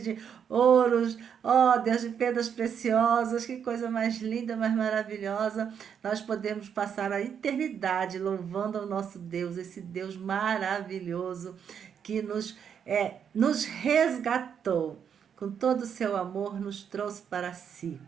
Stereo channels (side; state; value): left; quieter; 7.8 dB